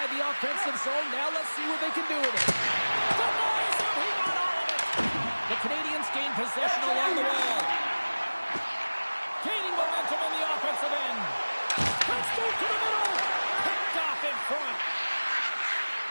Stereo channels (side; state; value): both; inverted; correlation -1.00